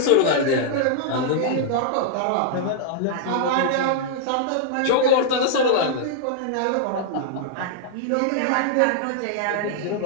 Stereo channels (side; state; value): both; different; correlation -0.01